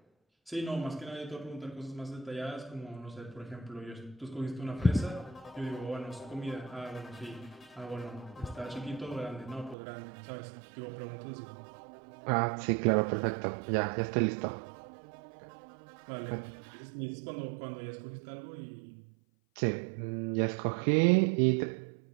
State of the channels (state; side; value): drops out; left; at 9.8 s